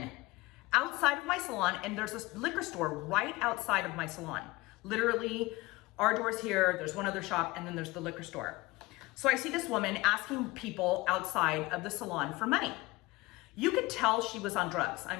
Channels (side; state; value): right; quieter; 21.2 dB